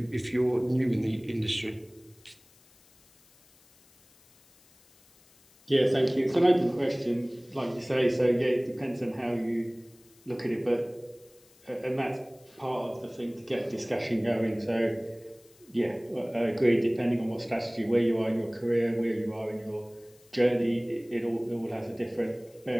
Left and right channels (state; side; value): noise; left; hiss, 29 dB below the sound